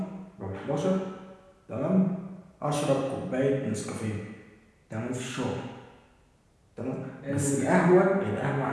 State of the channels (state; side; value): identical; both; correlation 1.00